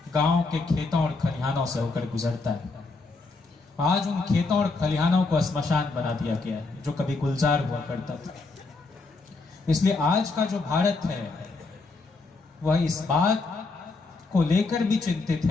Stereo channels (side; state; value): right; quieter; 3.7 dB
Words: गांव के खेतों और खलिहानों से होकर गुजरता है। आज उन खेतों और खलिहानों को श्मशान बना दिया गया है जो कभी गुलजार हुआ करता था। इसलिए आज का जो भारत है वह इस बात को लेकर भी चिंतित